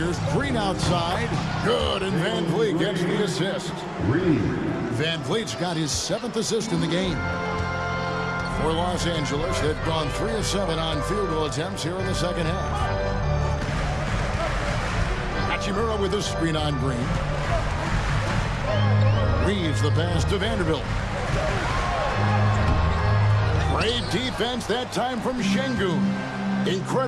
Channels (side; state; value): both; identical; correlation 1.00